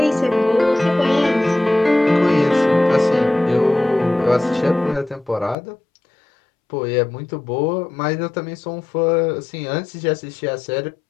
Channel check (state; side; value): drops out; right; at 5.6 s